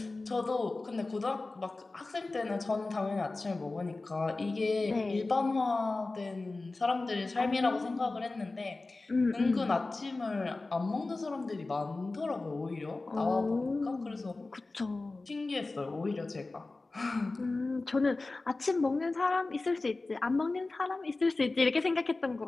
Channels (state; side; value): quieter; right; 3.3 dB